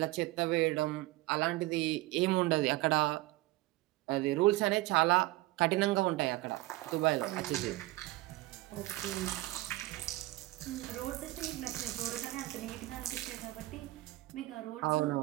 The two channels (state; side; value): quieter; left; 19.1 dB